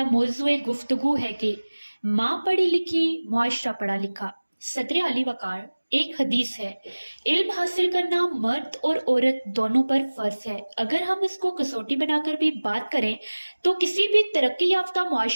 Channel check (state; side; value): inverted; both; correlation -1.00